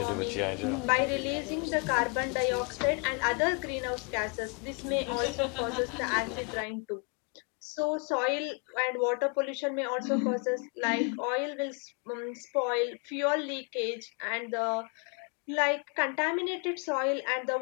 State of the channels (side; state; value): right; quieter; 36.7 dB